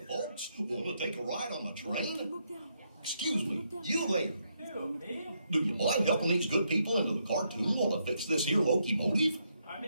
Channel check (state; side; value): inverted; both; correlation -0.78